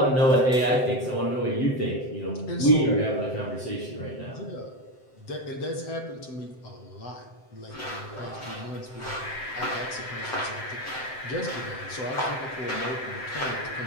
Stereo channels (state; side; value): late; right; 7.8 ms